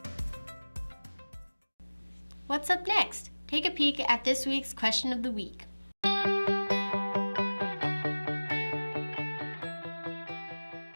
What's up next? Take a peek at this week's question of the week.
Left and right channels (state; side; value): inverted; both; correlation -1.00